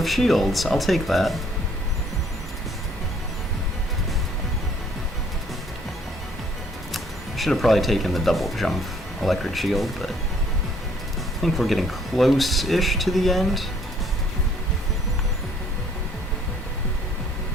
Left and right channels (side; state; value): both; normal; correlation 0.62